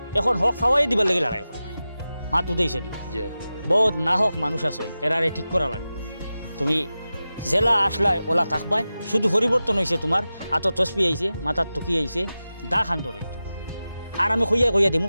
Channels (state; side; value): inverted; both; correlation -0.94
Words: এখন হক খাওয়াই দিবার লাগে লড়াই করবাই। মাত উঠেছ নি? জি বহুত না হক মানুষ আছে, এরারে ঠিক করা লাগবে। তুমি জেলা আসলাই ওলা থাকবাই, শুধু পরিবর্তন হয়েছে তোমার আত তসবি আইছে, মাথার টুকি আইছে, দা খান্দ রইতো। আর আমি কইয়া দিমু